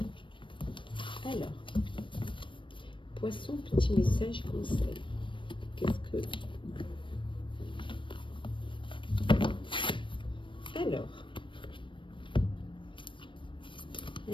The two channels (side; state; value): right; late; 0.24 ms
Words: Alors, poisson, petit message conseil. Qu'est-ce que...